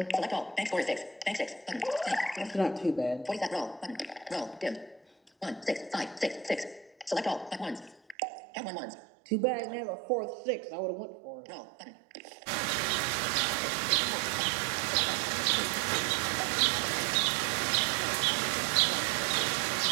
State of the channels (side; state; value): left; drops out; at 8.2 s